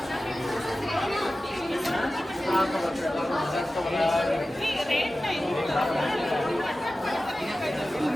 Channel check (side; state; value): both; normal; correlation 0.95